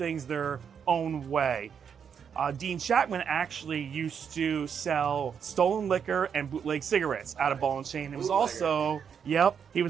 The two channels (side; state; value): left; quieter; 7.4 dB